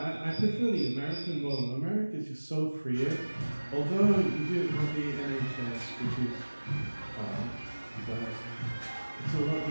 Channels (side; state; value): both; inverted; correlation -1.00